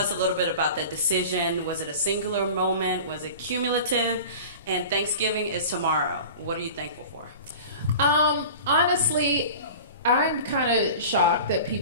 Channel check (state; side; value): inverted; both; correlation -0.37